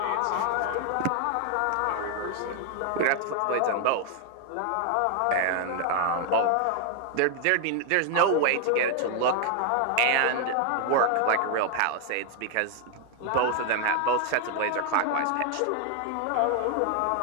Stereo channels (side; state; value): both; different; correlation 0.00